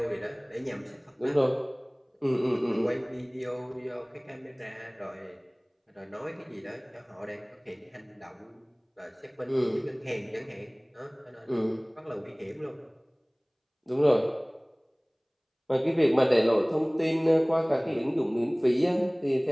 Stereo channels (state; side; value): identical; both; correlation 1.00